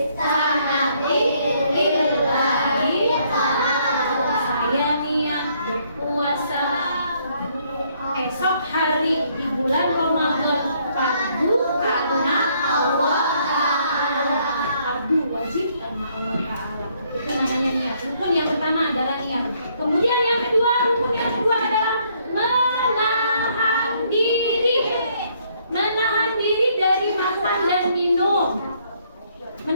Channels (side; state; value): both; inverted; correlation -0.68